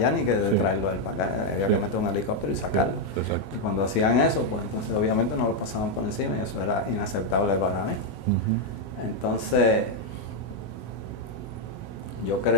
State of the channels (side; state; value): right; late; 18 ms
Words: ni que de traerlo él para acá. Había que meter un helicóptero y sacarlo. Y cuando hacían eso, pues entonces obviamente no lo pasaban por encima y eso era inaceptable para mí. Entonces yo